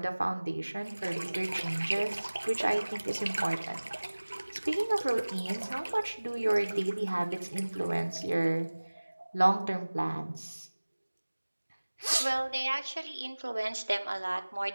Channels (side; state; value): both; inverted; correlation -1.00